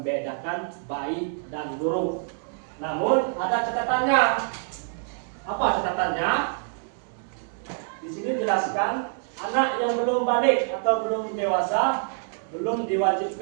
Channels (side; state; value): left; silent; digital silence